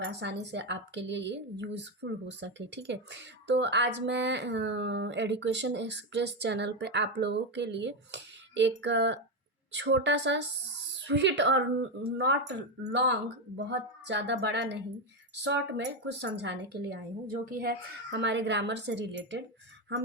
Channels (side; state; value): both; normal; correlation 0.10